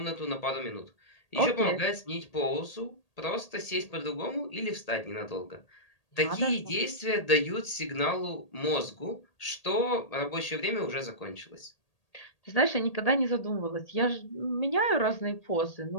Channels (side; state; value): right; late; 1.8 ms